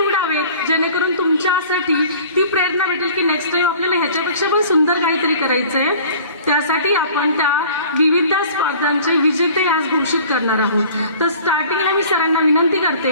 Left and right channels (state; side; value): inverted; both; correlation -0.47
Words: जेणेकरून तुमच्यासाठी ती प्रेरणा भेटेल की नेक्स्ट टाइम आपल्याला ह्याच्यापेक्षा पण सुंदर काहीतरी करायचंय. त्यासाठी आपण त्या विविध स्पर्धांचे विजेते आज घोषित करणार आहोत. तर स्टार्टिंगला मी सरांना विनंती